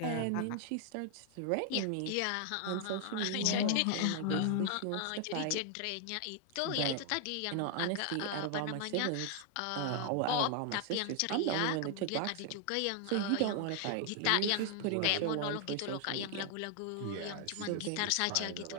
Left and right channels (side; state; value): both; different; correlation 0.00